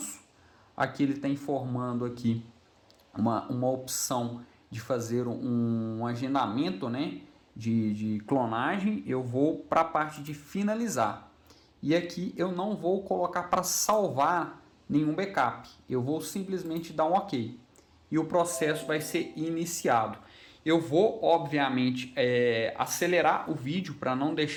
aqui ele está informando aqui uma opção de fazer um agendamento, né, de clonagem. Eu vou para a parte de finalizar. E aqui eu não vou colocar para salvar nenhum backup. Eu vou simplesmente dar um OK. E o processo vai ser iniciado. Eu vou, obviamente, acelerar o vídeo para não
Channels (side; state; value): both; identical; correlation 1.00